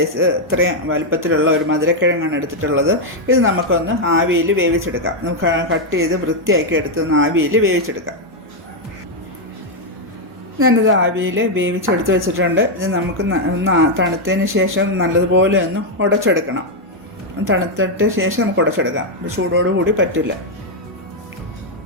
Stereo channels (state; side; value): normal; both; correlation 0.00